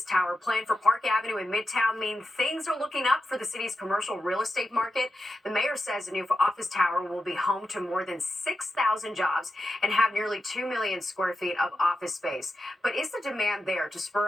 tower planned for Park Avenue in Midtown, mean things are looking up for the city's commercial real estate market? The mayor says the new office tower will be home to more than 6,000 jobs and have nearly 2 million square feet of office space. But is the demand there to spur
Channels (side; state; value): both; normal; correlation 0.89